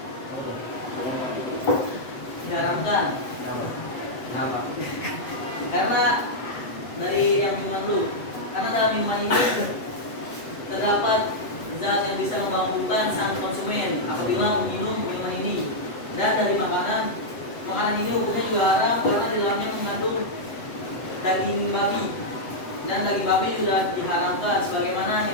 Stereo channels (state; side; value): late; right; 7.7 ms